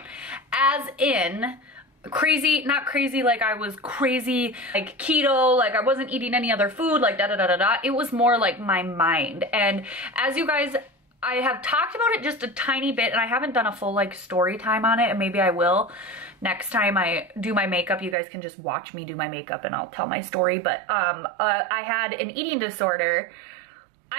As in, crazy, not crazy like I was crazy like keto, like I wasn't eating any other food, like da da da da da. It was more like my mind. And as you guys I have talked about it just a tiny bit, and I haven't done a full like story time on it, and maybe I will. Next time I do my makeup, you guys can just watch me do my makeup and I'll tell my story. But I had an eating disorder.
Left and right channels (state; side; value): drops out; left; at 18.2 s